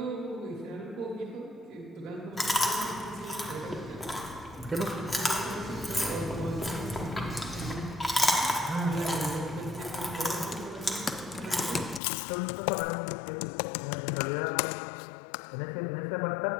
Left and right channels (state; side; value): drops out; right; at 12.0 s